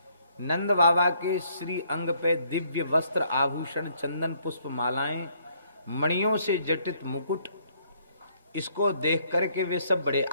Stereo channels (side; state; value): both; inverted; correlation -0.67